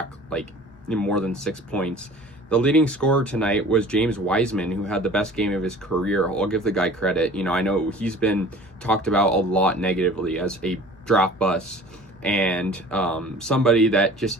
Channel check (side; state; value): both; normal; correlation 0.45